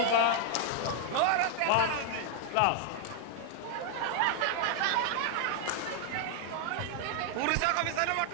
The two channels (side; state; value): both; different; correlation 0.00